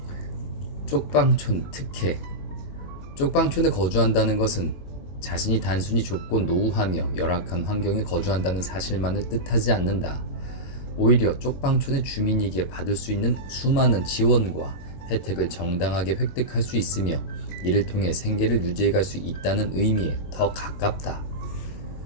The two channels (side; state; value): right; late; 22 ms